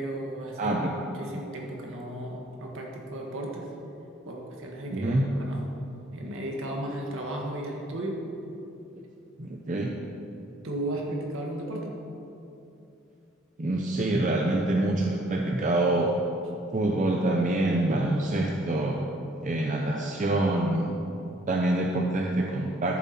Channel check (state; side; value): normal; both; correlation 0.61